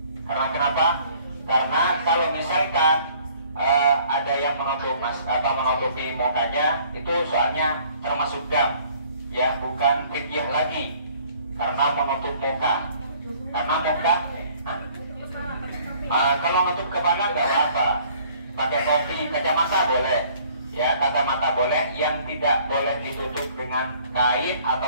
Karena kenapa? Karena kalau misalkan ada yang menutupi mukanya, itu soalnya termasuk dam, ya, bukan fidyah lagi, karena menutup muka. Karena muka, kalau menutup kepala nggak apa-apa, pakai topi, kacamata boleh, ya, kacamata boleh, yang tidak boleh ditutup dengan kain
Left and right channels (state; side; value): inverted; both; correlation -0.57